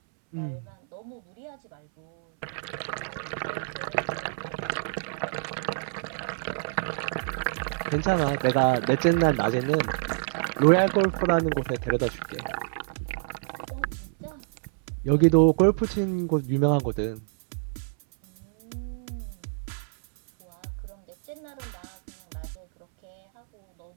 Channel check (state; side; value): silent; left; 60 dB below the other